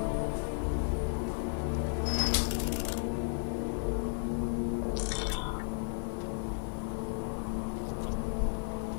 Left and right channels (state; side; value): silent; right; 55 dB below the other